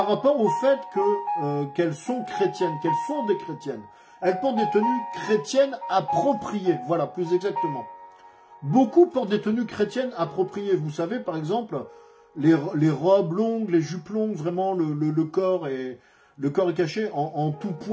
rapport au fait qu'elles sont chrétiennes, qu'elles sont des chrétiennes. Elles portent des tenues chrétiennes appropriées, voilà, plus exactement. Beaucoup portent des tenues chrétiennes appropriées. Vous savez, par exemple, les robes longues, les jupes longues, vraiment le corps est caché en tout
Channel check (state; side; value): identical; both; correlation 1.00